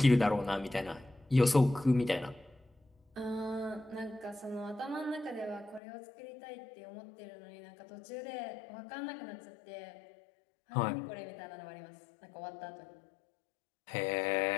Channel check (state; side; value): drops out; right; at 5.8 s